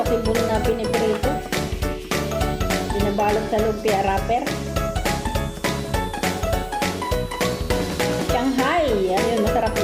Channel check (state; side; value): identical; both; correlation 1.00